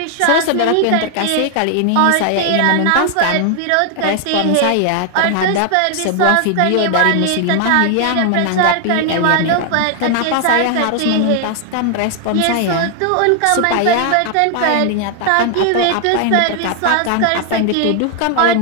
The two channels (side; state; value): both; different; correlation 0.00